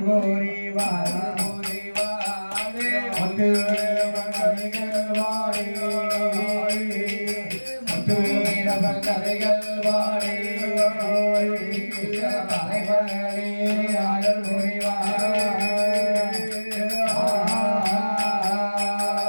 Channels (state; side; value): inverted; both; correlation -1.00